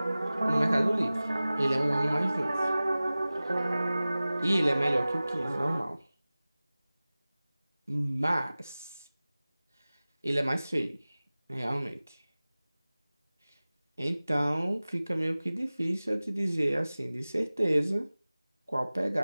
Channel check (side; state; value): both; inverted; correlation -0.98